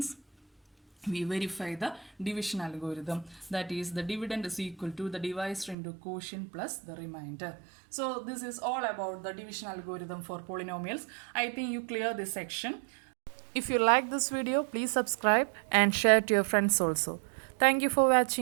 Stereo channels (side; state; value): left; drops out; at 5.8 s